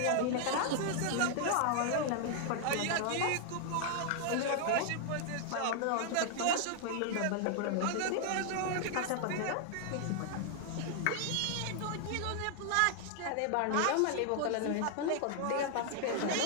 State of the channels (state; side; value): different; both; correlation 0.00